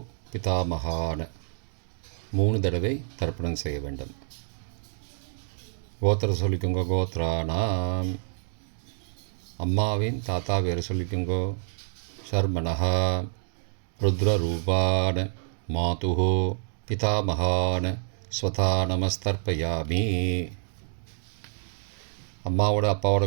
பிதாமகான 3 தடவை தர்ப்பணம் செய்ய வேண்டும். கோத்திரத்தை சொல்லிக்கோங்க கோத்ரானாம். அம்மாவின் தாத்தா பேரை சொல்லிக்கோங்கோ ஷர்மனஹா. ருத்ரரூபான மாதுகு பிதாமகான ஸ்வதா நமஸ்தர்ப்பயாமி. அம்மாவோட அப்பாவோட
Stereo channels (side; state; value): left; silent; 60 dB below the other